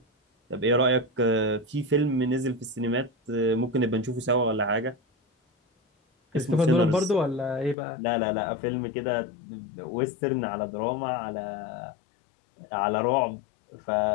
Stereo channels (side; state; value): right; drops out; at 7.8 s